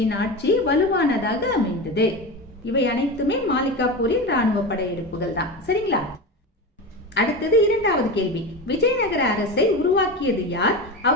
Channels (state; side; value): normal; both; correlation 0.24